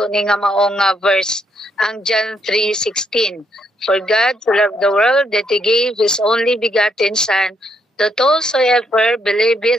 ni nga maong verse, ang John 3:16. For God to love the world that He gave His only begotten Son, that whosoever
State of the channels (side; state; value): both; normal; correlation 0.75